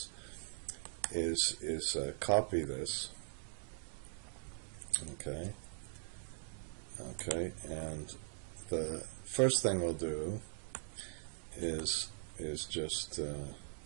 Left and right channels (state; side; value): silent; left; digital silence